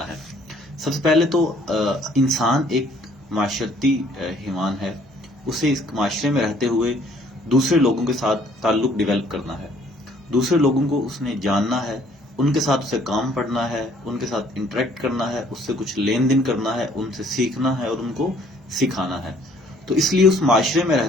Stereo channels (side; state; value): both; normal; correlation 0.60